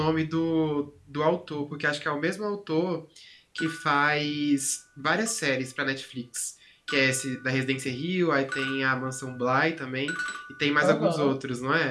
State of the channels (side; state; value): both; identical; correlation 1.00